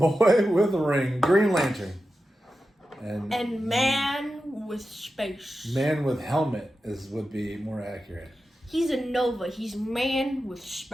with a ring, Green Lantern, and man with space. Man with helmet would be more accurate. He's a Nova. He's man with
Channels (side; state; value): both; normal; correlation 0.91